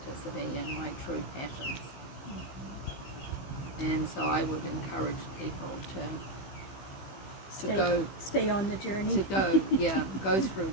and my true passions. And so I would encourage people to stay on the journey. Go through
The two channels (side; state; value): right; late; 15 ms